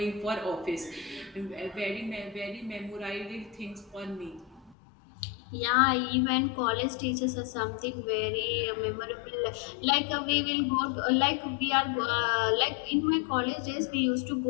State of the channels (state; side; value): drops out; right; at 4.8 s